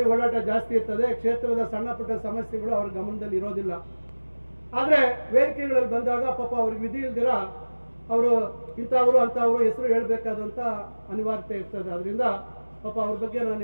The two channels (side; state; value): both; inverted; correlation -1.00